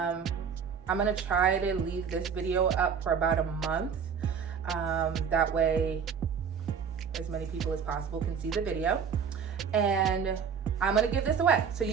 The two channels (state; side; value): quieter; left; 6.8 dB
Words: gonna try to leave this video up for about a month. That way as many people as possible can see the video. And I'm gonna give this away. So